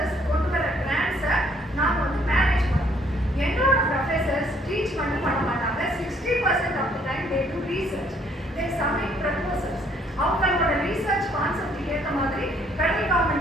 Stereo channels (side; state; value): both; normal; correlation 0.64